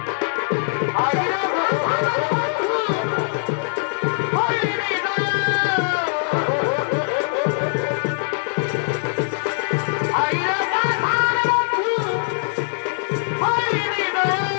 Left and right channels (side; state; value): right; silent; digital silence